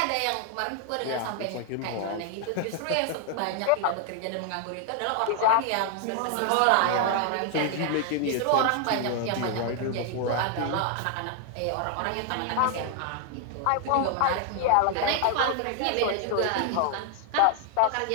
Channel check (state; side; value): different; both; correlation 0.00